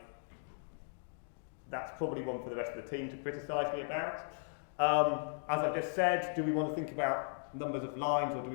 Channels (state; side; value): silent; right; digital silence